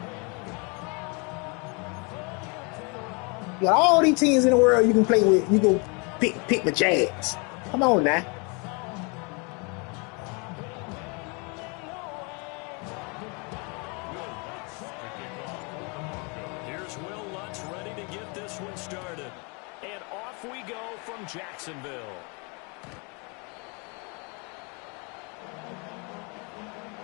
You got all these teams in the world you can play with. You go pick the Jags. Come on now. Here's Will Lutz ready to get this one started. And off we go from Jacksonville.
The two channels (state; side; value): quieter; right; 32.5 dB